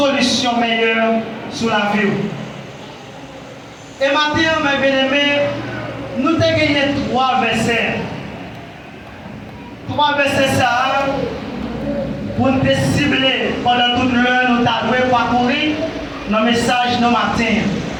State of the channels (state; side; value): identical; both; correlation 1.00